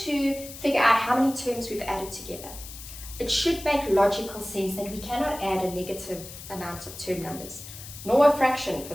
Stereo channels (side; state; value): left; noise; hiss, 13 dB below the sound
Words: figure out how many terms we've added together. It should make logical sense that we cannot add a negative amount of term numbers, nor a fraction for